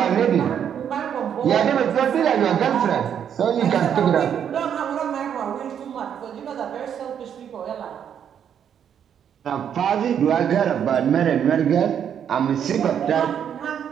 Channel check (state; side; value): quieter; left; 8.7 dB